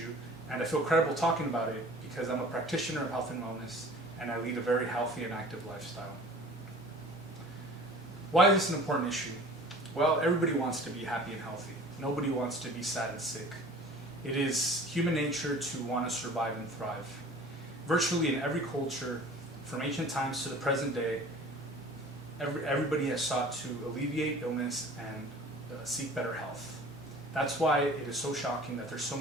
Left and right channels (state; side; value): normal; both; correlation 0.45